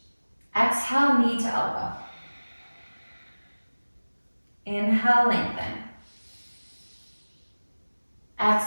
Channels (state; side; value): inverted; both; correlation -1.00